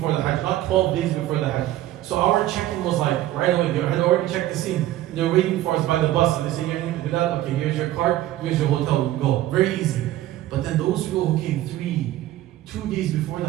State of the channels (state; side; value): quieter; left; 14.5 dB